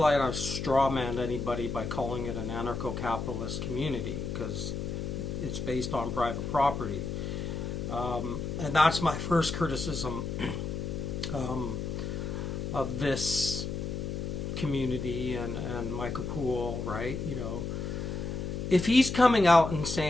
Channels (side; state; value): left; noise; hum, 4 dB below the sound